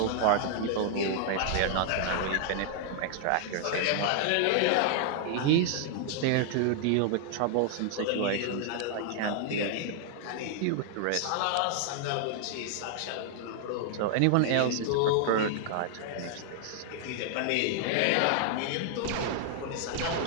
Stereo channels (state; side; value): different; both; correlation 0.00